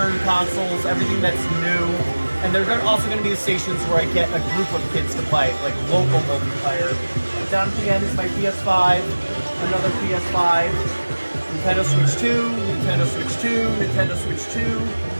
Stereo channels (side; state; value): both; inverted; correlation -1.00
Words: consoles, everything that's new. And they're also going to be the stations where I get a group of kids to play, like local multiplayer. Down at the end is my PS5, another PS5, Nintendo Switch 2, Nintendo Switch 2, Nintendo Switch 2,